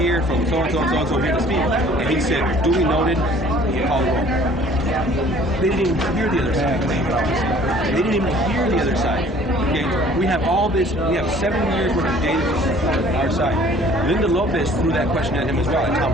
from so-and-so and so-and-so here to speak. And he said, duly noted, call the roll. They didn't even hear the other side. They didn't even hear the other side. Okay, we have all this. We have 7 years worth of data on our side. Linda Lopez threw that question at him as well, and Tom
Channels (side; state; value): both; normal; correlation 0.53